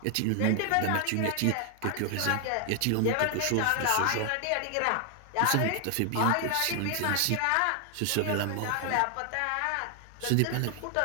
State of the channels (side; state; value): both; different; correlation 0.00